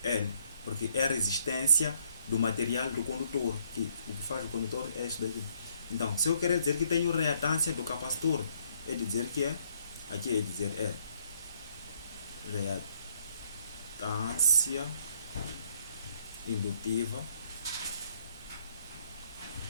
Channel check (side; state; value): both; inverted; correlation -0.67